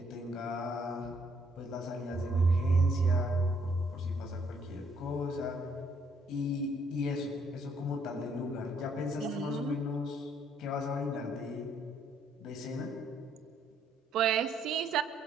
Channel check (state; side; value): normal; both; correlation 0.68